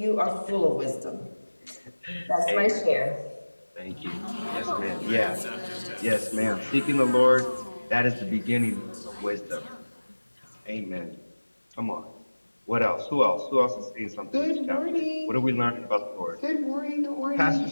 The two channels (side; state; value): both; inverted; correlation -1.00